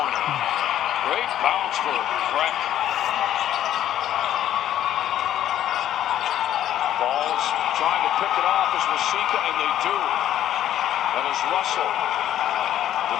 Great bounce for Breck. Ball's trying to pick it off as Wasika, and they do. That is Russell.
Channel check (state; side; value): quieter; right; 11.6 dB